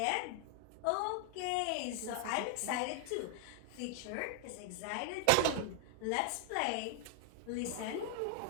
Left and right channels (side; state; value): both; different; correlation 0.00